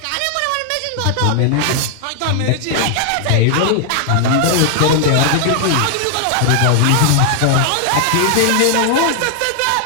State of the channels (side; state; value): both; different; correlation 0.00